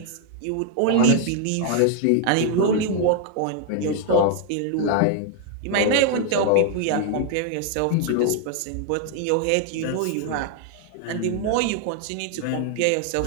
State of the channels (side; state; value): both; different; correlation 0.00